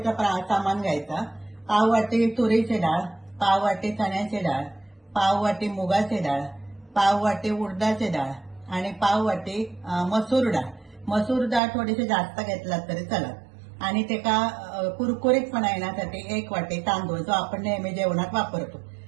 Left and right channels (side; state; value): left; drops out; at 11.6 s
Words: सामान घ्यायचा. पाव वाटी तुरीची डाळ, पाव वाटी चण्याची डाळ, पाव वाटी मुगाची डाळ, पाव वाटी उडदाची डाळ आणि पाव वाटी मसूर डाळ. मसूर डाळ थोडीशी जास्त घेतलात तरी चालत. आणि त्याला कुरकुरीतपणा येण्यासाठी 1 वाटी तांदूळ जो आपण नेहमी जेवणात वापरतो.